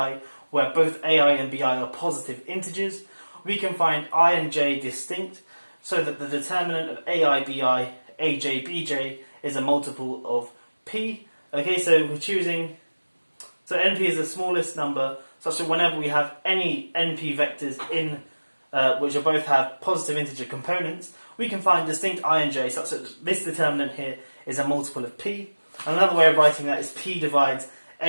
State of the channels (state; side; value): inverted; both; correlation -1.00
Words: where both AI and BI are positive integers, we can find I and J distinct, so that the determinant of AI, BI, AJ, BJ is a multiple of p. Okay, so we're choosing, so NP is the smallest number, such that whenever we have any NP vectors in, which are both have positive integer components, we can find distinct I and J, such that this determinant here is a multiple of p. And another way of writing that is p divides